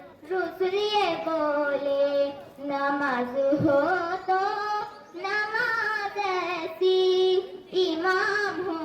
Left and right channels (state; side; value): identical; both; correlation 1.00